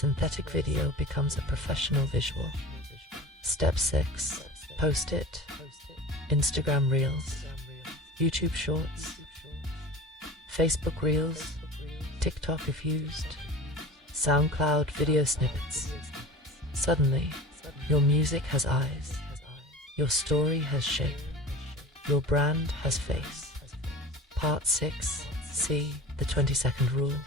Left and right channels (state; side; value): normal; both; correlation 0.36